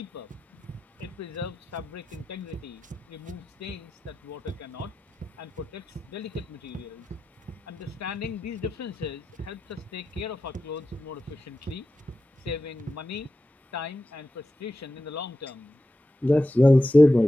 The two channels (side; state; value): both; normal; correlation 0.91